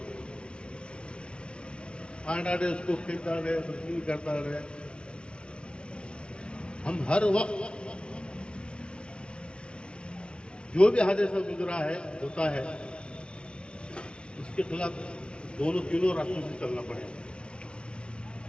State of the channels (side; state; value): right; late; 0.056 ms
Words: फांड रहे, उसको फेंकता रहे, बदतमीजी करता रहे। हम हर वक्त जो भी हादसा गुजरा है, होता है, उसके खिलाफ दोनों तीनों रास्तों से चलना पड़ेगा।